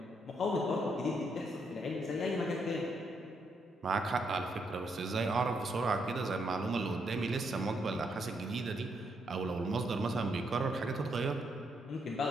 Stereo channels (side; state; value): both; normal; correlation 0.77